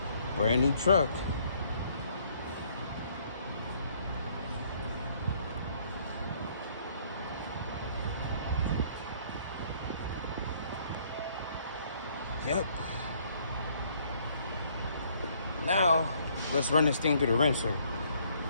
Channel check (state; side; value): inverted; both; correlation -0.64